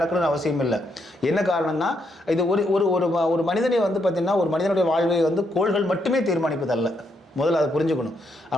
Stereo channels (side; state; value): both; normal; correlation 0.77